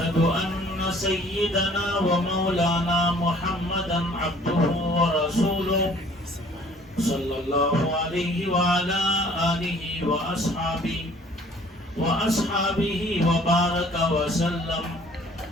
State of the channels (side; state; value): both; normal; correlation 0.54